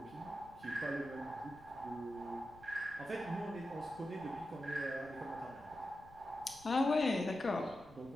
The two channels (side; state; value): left; noise; rumble, 22 dB below the sound